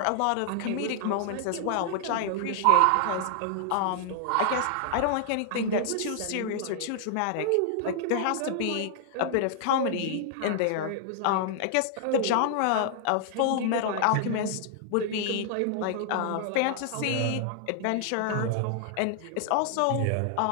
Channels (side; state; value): both; different; correlation 0.00